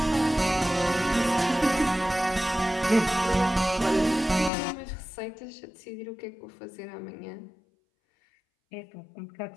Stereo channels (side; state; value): right; drops out; at 4.5 s